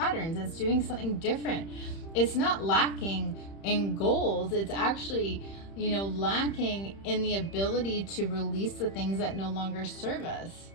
It's doing something different. It's not lacking in goals. It's actually, you know, lacking in the ability to release the things that no longer serve us,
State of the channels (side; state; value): right; late; 31 ms